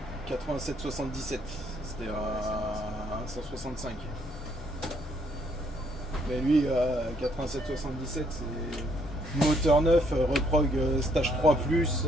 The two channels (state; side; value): normal; both; correlation 0.69